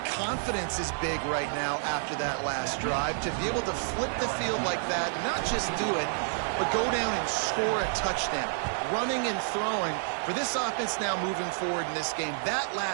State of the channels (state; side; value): silent; left; digital silence